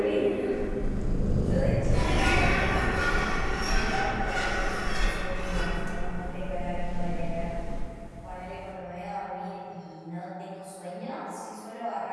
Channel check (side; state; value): both; identical; correlation 1.00